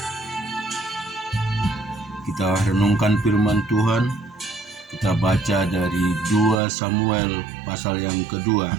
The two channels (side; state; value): left; drops out; at 6.6 s